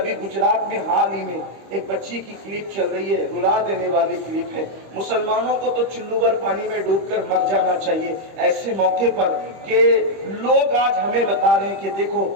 गुजरात में हाल ही में एक बच्ची की क्लिप चल रही है, रुला देने वाली क्लिप है। मुसलमानों को तो चुल्लू भर पानी में डूबकर मर जाना चाहिए ऐसे मौके पर कि लोग आज हमें बता रहे हैं कि देखो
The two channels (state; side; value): late; left; 25 ms